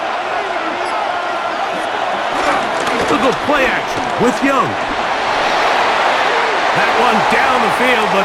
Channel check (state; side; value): identical; both; correlation 1.00